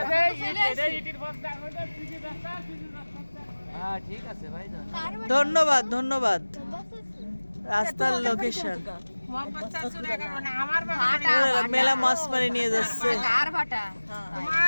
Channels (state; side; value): inverted; both; correlation -1.00